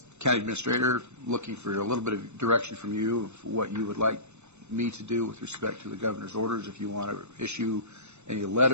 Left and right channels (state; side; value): late; left; 0.82 ms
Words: county administrator, looking for a little bit of direction from you of what you would like me to do with respect to the governor's orders. If you want to issue any